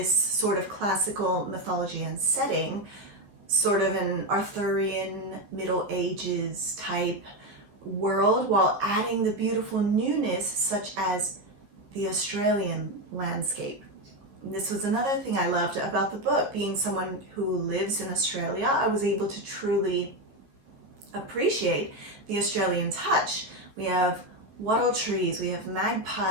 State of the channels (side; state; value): left; late; 15 ms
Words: sort of classical mythology and setting, sort of an Arthurian Middle Ages type world, while adding the beautiful newness such as the Australian landscape. And this was another thing I loved about the book. Being someone who lives in Australia, I was able to truly appreciate the Australian touch. We have wattle trees, we have